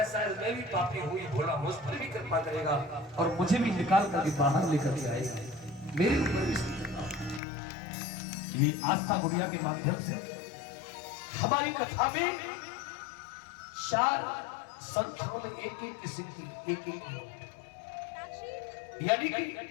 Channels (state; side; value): drops out; right; at 7.4 s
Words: शायद मैं भी पापी हुई, भोला मुझ पर भी कृपा करेगा और मुझे भी निकाल करके बाहर लेकर के आएगा, मेरे ऊपर भी। ये आस्था गुड़िया के माध्यम से हमारी कथा में 4 संख्याओं में एक-एक की सिद्धि, एक-एक यानी कि